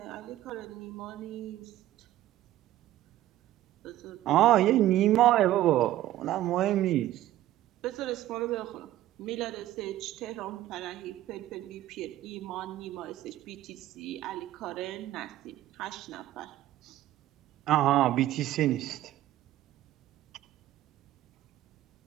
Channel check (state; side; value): quieter; left; 14.0 dB